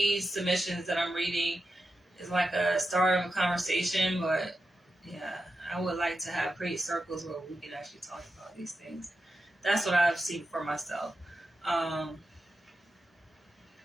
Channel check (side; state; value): both; normal; correlation 0.90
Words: submissions that I'm reading is like a start of a conversation, but yeah, I would like to create circles where we can actually talk about these things. That's what I've seen for myself. And